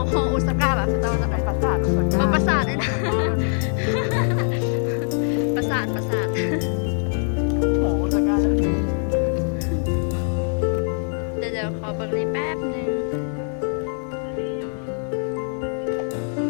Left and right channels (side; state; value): right; silent; 61 dB below the other